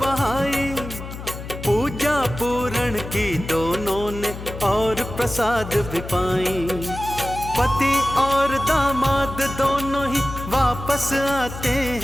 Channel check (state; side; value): noise; left; hum, 10 dB below the sound